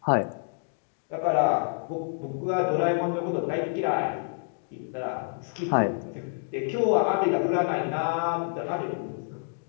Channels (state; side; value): silent; right; digital silence